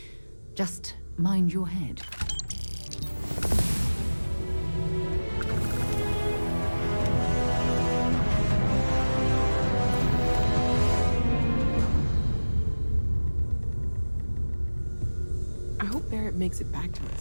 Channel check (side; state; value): both; inverted; correlation -1.00